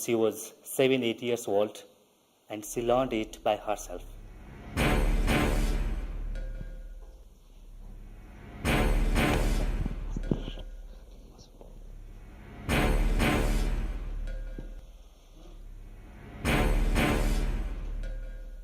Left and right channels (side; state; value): both; identical; correlation 1.00